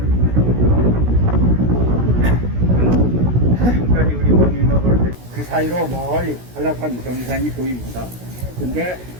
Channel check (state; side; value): late; left; 16 ms